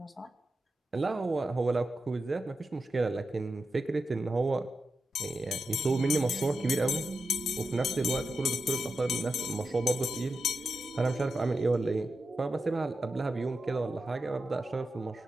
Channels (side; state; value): both; normal; correlation 0.89